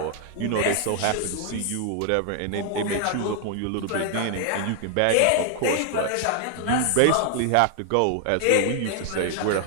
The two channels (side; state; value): both; different; correlation 0.00